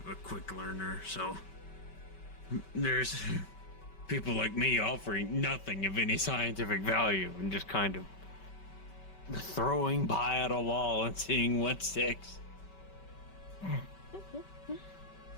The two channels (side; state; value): right; late; 5.2 ms